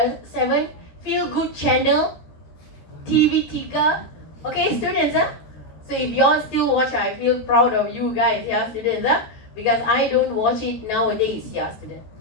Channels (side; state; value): right; late; 14 ms